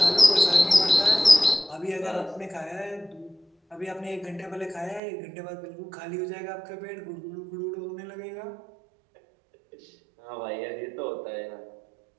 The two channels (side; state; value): left; drops out; at 5.0 s